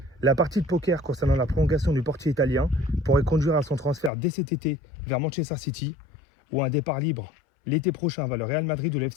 La partie de poker concernant la prolongation du portier italien pourrait conduire à son transfert dès cet été vers Manchester City ou à un départ libre l'été prochain vers le Real Madrid ou le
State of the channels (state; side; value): drops out; right; at 4.1 s